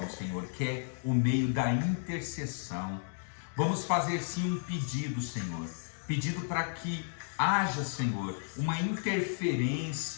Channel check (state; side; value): silent; right; digital silence